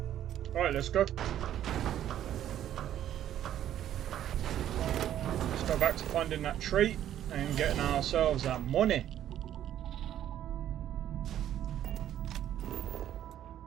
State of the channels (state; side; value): quieter; left; 11.3 dB